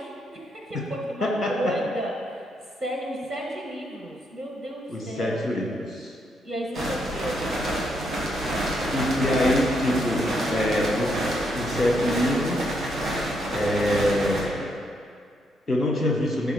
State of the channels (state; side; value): normal; both; correlation 0.77